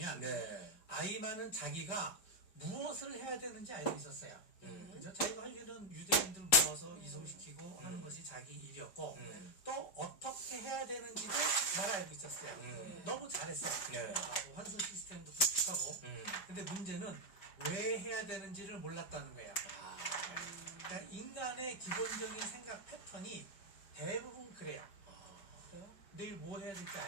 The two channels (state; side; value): late; right; 5.0 ms